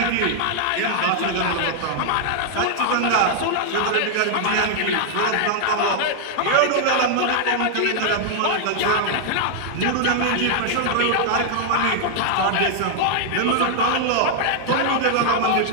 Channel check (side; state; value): both; different; correlation 0.00